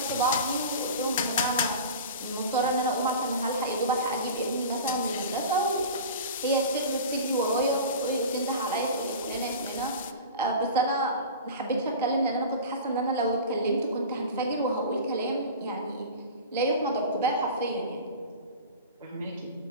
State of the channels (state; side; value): inverted; both; correlation -0.34